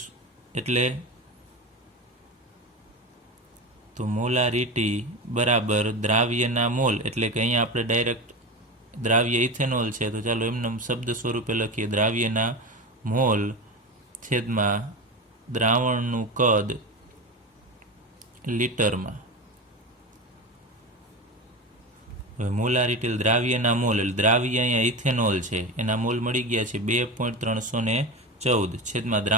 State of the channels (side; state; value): both; normal; correlation 0.24